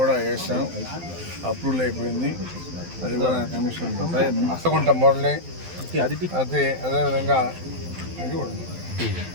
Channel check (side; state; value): left; late; 12 ms